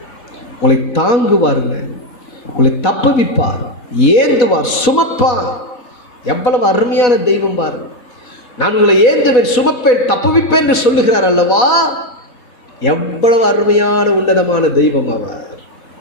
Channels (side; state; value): right; late; 4.1 ms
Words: உங்களை தாங்குவாருங்க, உங்களை தப்புவிப்பார், ஏந்துவார், சுமப்பார். எவ்வளவு அருமையான தெய்வம் பாரு. நான் உங்களை ஏந்துவேன், சுமப்பேன், தப்புவிப்பேன் என்று சொல்லுகிறார் அல்லவா? எவ்வளவு அருமையான உன்னதமான தெய்வம் அவர்.